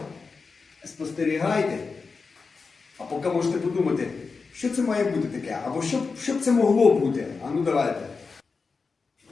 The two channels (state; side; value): quieter; right; 4.6 dB